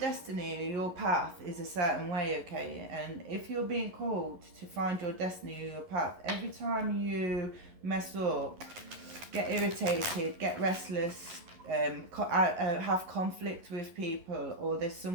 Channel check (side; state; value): left; late; 11 ms